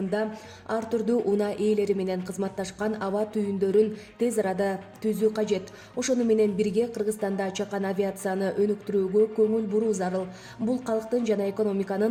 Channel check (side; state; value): both; identical; correlation 1.00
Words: ар түрдүү унаа ээлери менен кызматташкан аба түйүндөрүн тез арада түзүү кажет. Ошону менен бирге Кыргызстанда чакан авиацияны өнүктүрүүгө көңүл буруу зарыл. Бул калктын жана